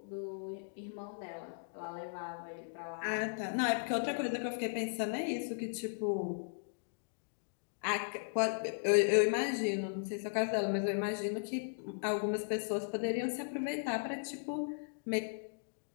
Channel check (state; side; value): silent; right; digital silence